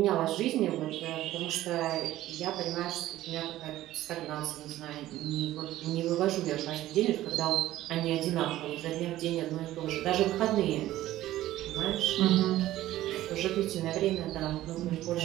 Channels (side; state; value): left; quieter; 14.7 dB